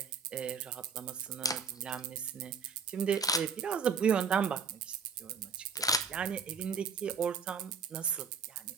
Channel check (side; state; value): left; quieter; 5.6 dB